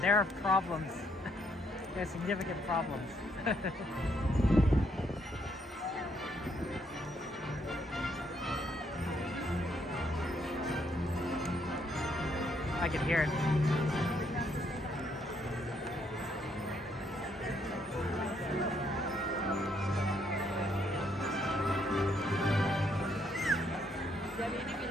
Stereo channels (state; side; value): normal; both; correlation 0.72